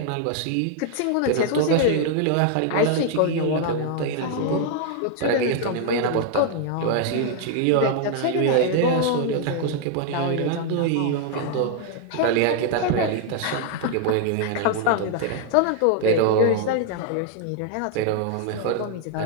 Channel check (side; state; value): both; different; correlation 0.00